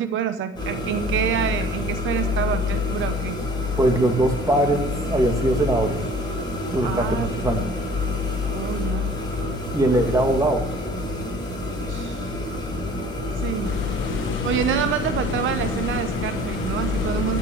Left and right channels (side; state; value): both; normal; correlation 0.49